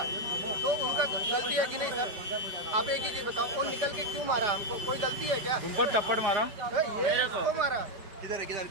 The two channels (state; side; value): late; left; 4.9 ms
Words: तो उनका गलती है कि नहीं सर? आप एक ही चीज बताओ, वो निकल के क्यों मारा हमको, कोई गलती है क्या? तुम पर थप्पड़ मारा ये इसको मारा, किधर है